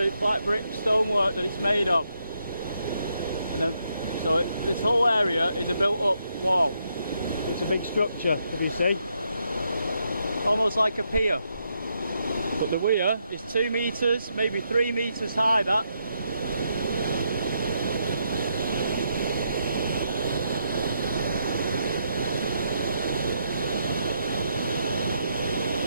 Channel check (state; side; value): inverted; both; correlation -0.78